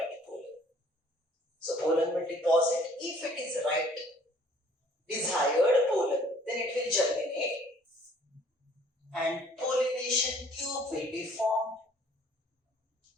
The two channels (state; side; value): normal; both; correlation 0.57